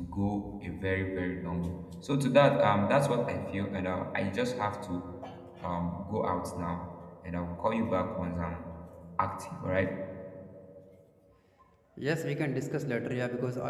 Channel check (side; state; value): both; identical; correlation 1.00